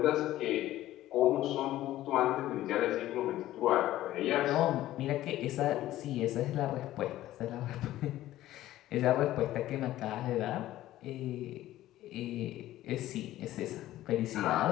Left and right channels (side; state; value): right; quieter; 14.6 dB